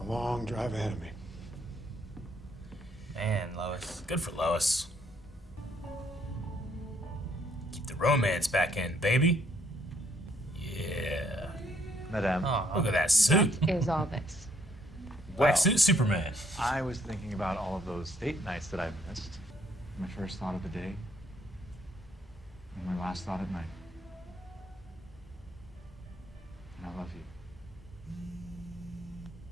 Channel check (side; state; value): both; normal; correlation 0.68